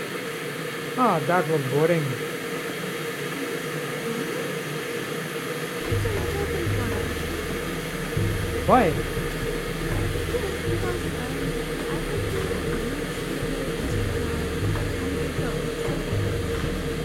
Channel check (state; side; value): identical; both; correlation 1.00